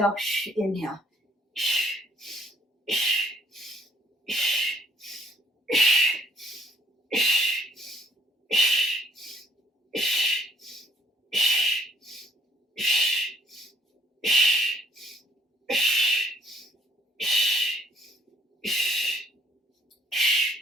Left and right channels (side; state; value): both; normal; correlation 0.63